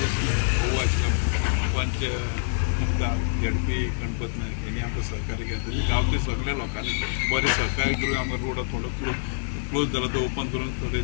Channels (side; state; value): right; silent; digital silence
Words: भोव आशिल्लो पंच मुक्तार झेडपी गणपत नायक हेणी आमकां सहकार्य केलें। गांवचे सगळ्या लोकांनी बरें सहकार्य करून आमकां रोड थोडो क्लोज जालो तो ओपन करून थोडे